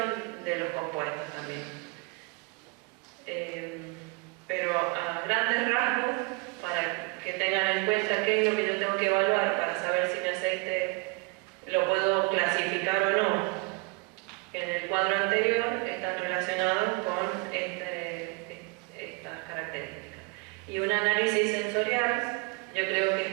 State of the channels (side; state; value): left; quieter; 29.3 dB